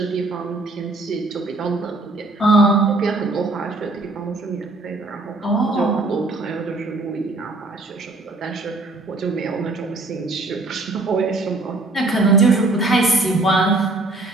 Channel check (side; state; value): left; quieter; 3.0 dB